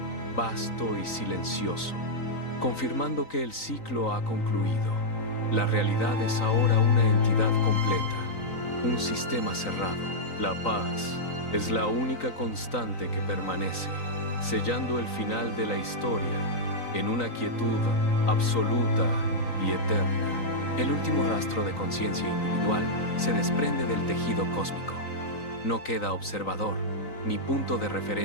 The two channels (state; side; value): late; right; 3.9 ms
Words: vasto y silencioso, confirmando que el ciclo ha concluido. La realidad es ahora una entidad completa, un sistema cerrado. La paz es la única constante que permanece, sellando el final de la historia en una quietud absoluta y eterna. El último rastro de conciencia individual se desprende del tejido cósmico. No queda observador, ni punto de